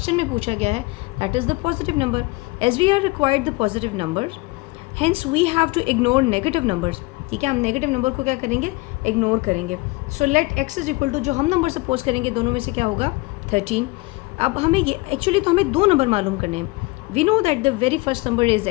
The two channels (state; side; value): quieter; right; 23.3 dB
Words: में पूछा गया है, that is the positive number. As we are required the positive numbers, hence we have to ignore negative numbers. ठीक है, हम नेगेटिव नंबर को क्या करेंगे, इग्नोर करेंगे. So let x is equal to, जो हम नंबर सपोज करेंगे दोनों में से क्या होगा, 13. अब हमें ये एक्चुअली तो हमें दो नंबर मालूम करने हैं. We know that the very first number is